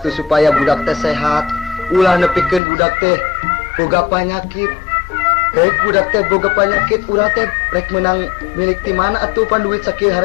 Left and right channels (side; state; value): right; drops out; at 2.6 s